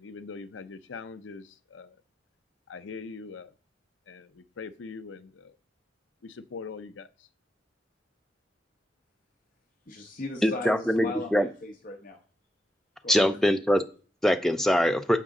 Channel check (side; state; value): both; normal; correlation 0.86